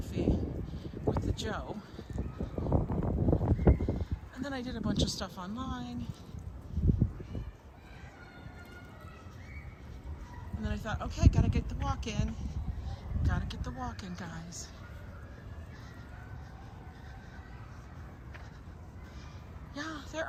with the Joe. And then I did a bunch of stuff online. And then I thought, okay, gotta get the walk in. Gotta get the walk in, guys. Yeah, there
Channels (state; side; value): identical; both; correlation 1.00